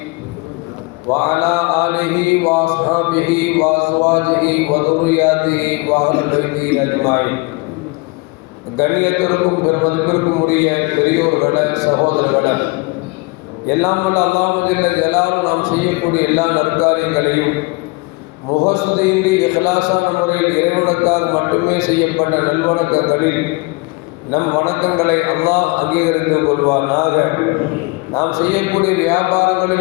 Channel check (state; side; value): quieter; right; 26.4 dB